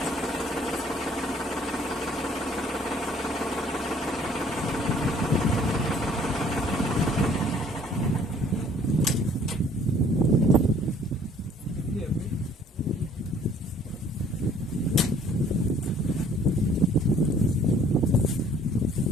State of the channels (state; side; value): normal; both; correlation 0.57